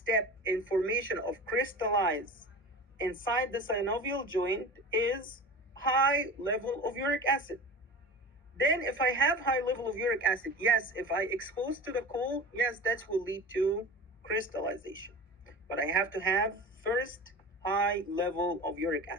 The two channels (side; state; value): both; normal; correlation 0.33